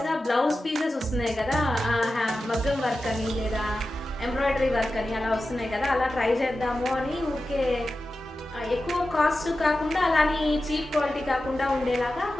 బ్లౌజ్ పీసెస్ వస్తున్నాయి కదా, మగ్గం వర్క్ అని లేదా ఎంబ్రాయిడరీ వర్క్ అని అలా వస్తున్నాయి కదా, అలా ట్రై చేద్దాము అని ఊరికే ఎక్కువ కాస్ట్ కాకుండా అలానే చీప్ క్వాలిటీ కాకుండా ఉండేలాగా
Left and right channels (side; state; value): both; normal; correlation 0.93